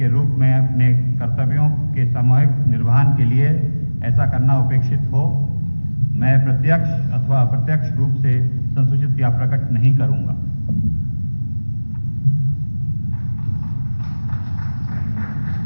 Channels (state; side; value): inverted; both; correlation -1.00